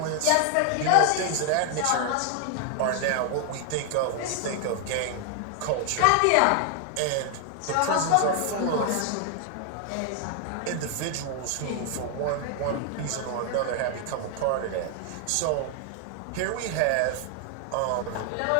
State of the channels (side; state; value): both; different; correlation 0.00